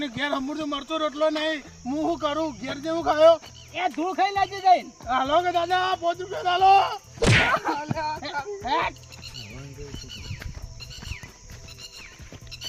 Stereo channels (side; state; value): both; identical; correlation 1.00